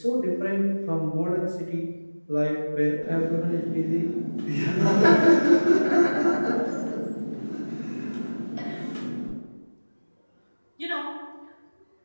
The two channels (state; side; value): inverted; both; correlation -1.00